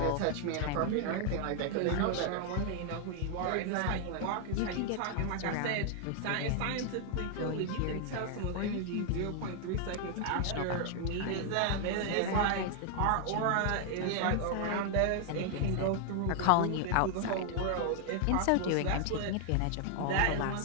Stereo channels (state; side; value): different; both; correlation 0.00